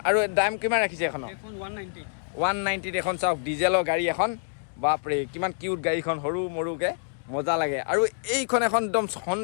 আৰু দাম কিমান ৰাখিছে এখন 190 এখন চাওক ডিজেলৰ গাড়ী এখন বাপৰে কিমান কিউট গাড়ীখন সৰু মৰুকে মজা লাগে আৰু এইখন এখন একদম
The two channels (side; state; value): right; silent; digital silence